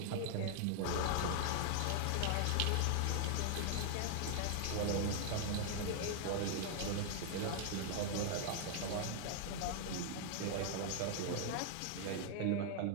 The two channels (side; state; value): both; different; correlation 0.00